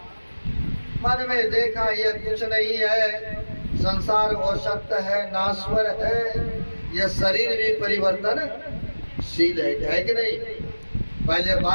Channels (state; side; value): inverted; both; correlation -1.00